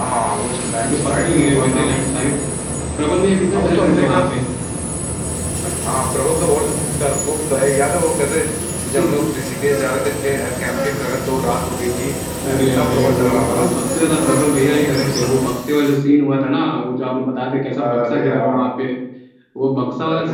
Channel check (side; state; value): both; identical; correlation 1.00